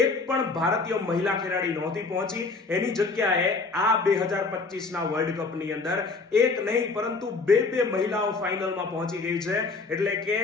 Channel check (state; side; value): quieter; right; 4.0 dB